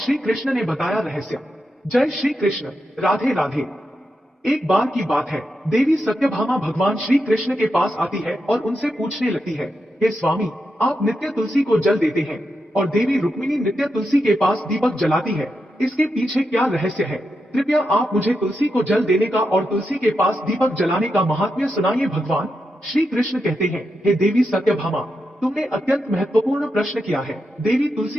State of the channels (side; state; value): both; normal; correlation 0.86